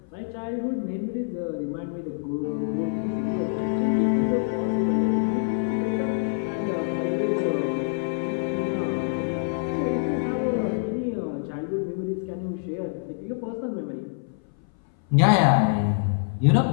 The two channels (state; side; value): silent; right; 58 dB below the other